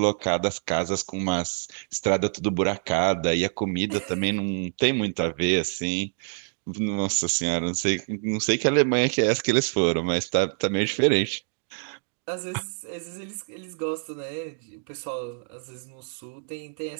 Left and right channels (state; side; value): silent; left; digital silence